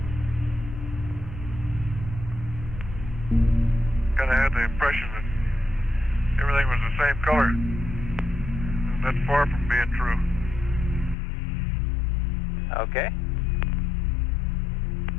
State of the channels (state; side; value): drops out; right; at 11.2 s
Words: Kind of had the impression that everything was the same color. That's far from being true. Okay.